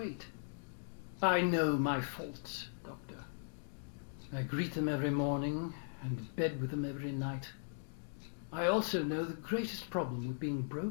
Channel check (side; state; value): right; silent; digital silence